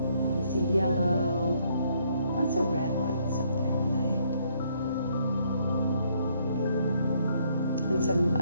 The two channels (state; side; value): inverted; both; correlation -0.70